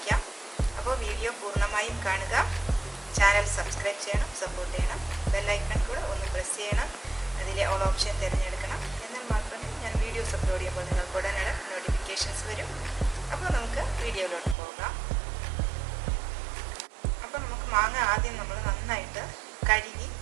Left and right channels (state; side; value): drops out; left; at 14.6 s